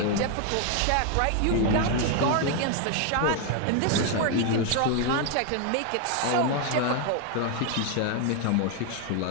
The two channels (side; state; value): both; different; correlation 0.01